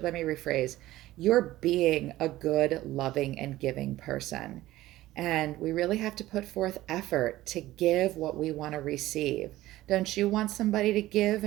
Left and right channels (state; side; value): quieter; left; 16.1 dB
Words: let me rephrase. You're being a good, loving, and giving person. And we really have to put forth effort to give what we want to receive. Don't you want somebody to give